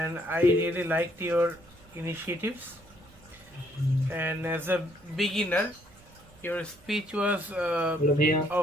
I really liked your initiatives. And as a beginner, your speech was Hello, Bhaiya.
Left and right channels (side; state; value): right; noise; rumble, 25 dB below the sound